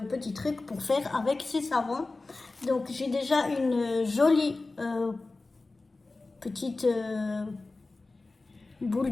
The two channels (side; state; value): right; quieter; 3.4 dB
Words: petits trucs pour faire avec ces savons. Donc, j'ai déjà une jolie petite